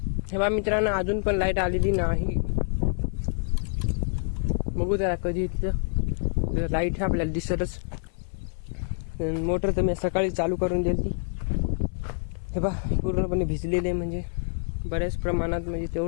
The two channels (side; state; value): right; silent; 55 dB below the other